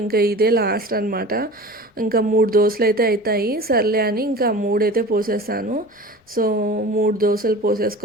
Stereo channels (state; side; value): normal; both; correlation 0.37